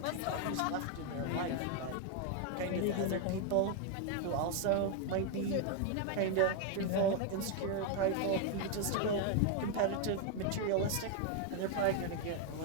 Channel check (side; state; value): both; different; correlation 0.01